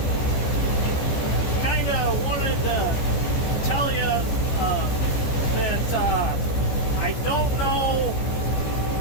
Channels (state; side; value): late; right; 14 ms